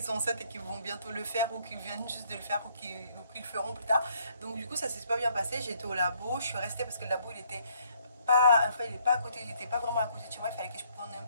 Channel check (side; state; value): both; inverted; correlation -0.66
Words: sont enceintes et qui vont bientôt le faire ou qui viennent juste de le faire ou qui le feront plus tard. Donc du coup ça s'est super bien passé. J'étais au labo, je suis restée parce que le labo il était pas, enfin, il est pas à côté, il n'était pas vraiment à côté de chez moi, il fallait que je prenne un